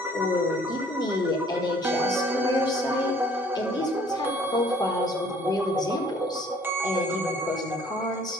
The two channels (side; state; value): both; normal; correlation 0.57